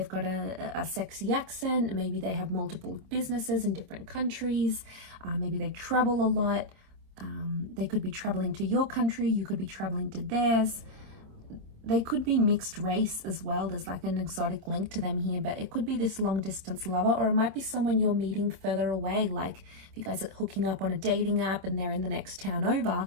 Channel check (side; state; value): left; late; 26 ms